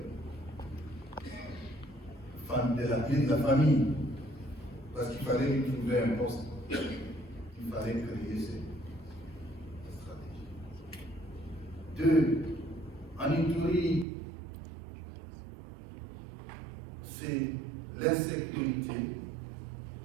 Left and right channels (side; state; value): left; drops out; at 14.1 s